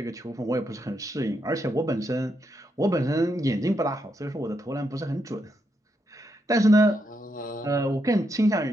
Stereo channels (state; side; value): normal; both; correlation 0.81